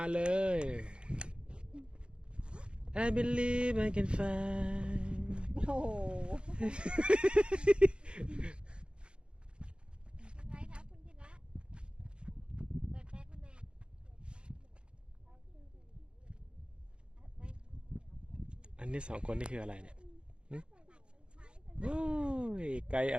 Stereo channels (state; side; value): late; left; 0.055 ms